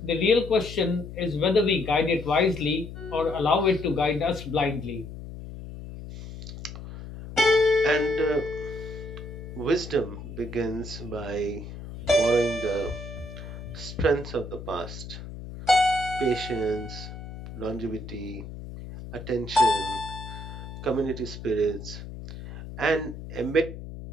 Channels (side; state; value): left; noise; hum, 11 dB below the sound